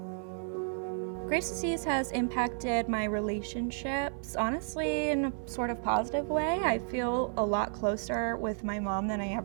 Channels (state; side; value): silent; left; digital silence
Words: Graves' disease has impacted my relationships, honestly, in a sort of positive way. I feel a lot closer with my mom than I